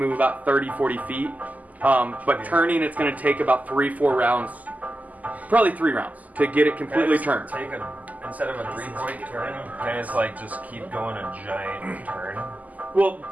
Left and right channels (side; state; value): left; late; 0.078 ms